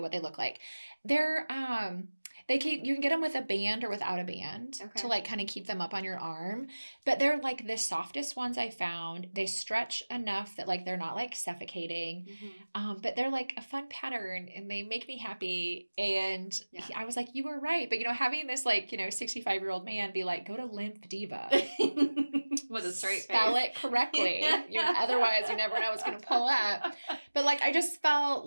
what they look like. They're, you can get them with a band or without a band to like kind of keep them up on your arm. But they're like the softest ones I found. They stretch enough that like they're not like suffocating. But they're like a fun pattern, and they make me happy. And I was like, you were right. But, you know, having this like, you know, 65-year-old man be like, go to Lymph Diva. With a straight face. Spell it correctly. Otherwise, you never know what's going to pull up. But like, I just felt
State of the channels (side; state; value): both; inverted; correlation -1.00